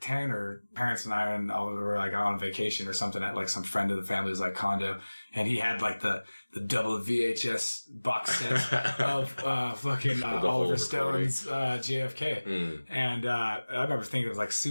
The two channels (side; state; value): both; inverted; correlation -1.00